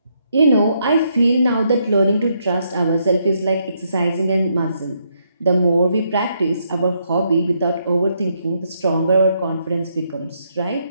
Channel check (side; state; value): both; inverted; correlation -0.76